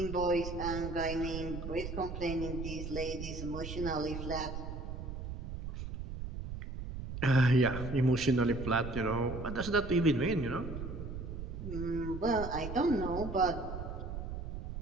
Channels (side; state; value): right; noise; rumble, 7 dB below the sound